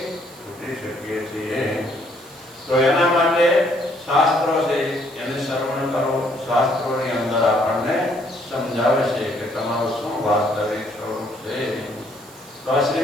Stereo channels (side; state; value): right; noise; hiss, 22 dB below the sound